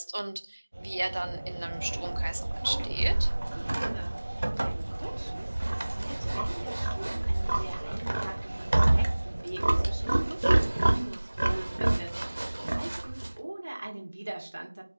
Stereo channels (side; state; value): both; inverted; correlation -1.00